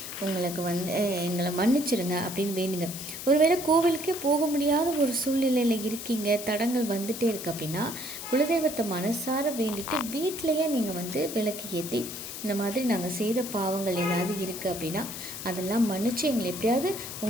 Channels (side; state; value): left; noise; hiss, 9 dB below the sound